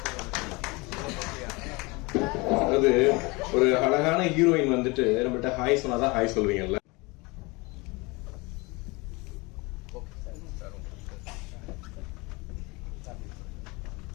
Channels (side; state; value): right; quieter; 25.7 dB